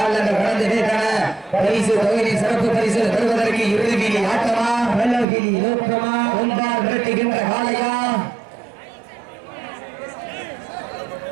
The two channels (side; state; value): left; drops out; at 5.2 s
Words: கடந்து விட்டன. பரிசு தொகையின் சிறப்பு பரிசுகள் பெறுவதற்கு இறுதியில் ஆட்டமா, வெள்ளகிரி நோக்கமா, ஒன்றால் விரட்டுகின்ற காலையா?